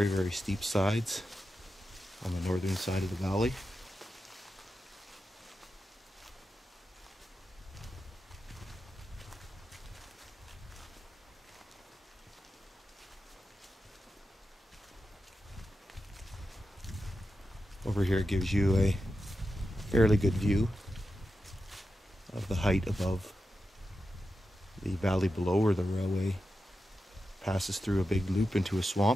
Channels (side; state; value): both; normal; correlation 0.90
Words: very steep sides on the northern side of the valley. Over here gives you a fairly good view of the height above the valley below, where the railway passes through a big loop into a